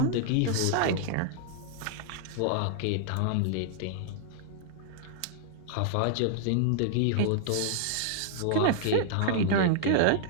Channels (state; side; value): different; both; correlation -0.01